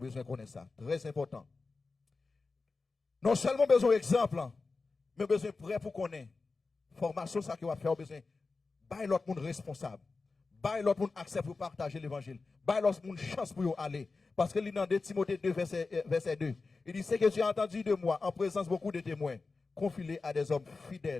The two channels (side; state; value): right; quieter; 4.0 dB